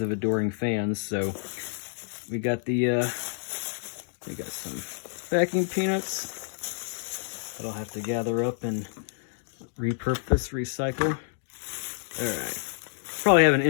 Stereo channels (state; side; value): silent; right; digital silence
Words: of adoring fans. So we got we got some packing peanuts that I'll have to gather up and repurpose, recycle. All right. Probably have an